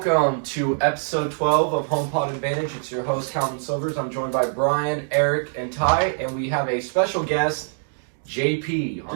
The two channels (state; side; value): silent; left; digital silence